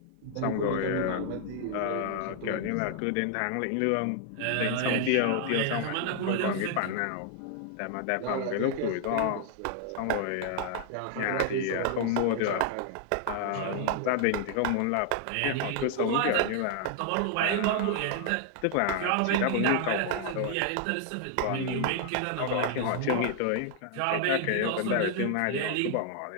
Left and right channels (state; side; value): different; both; correlation 0.00